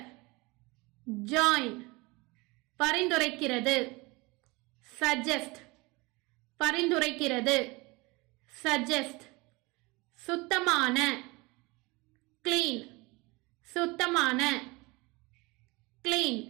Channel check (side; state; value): left; quieter; 24.7 dB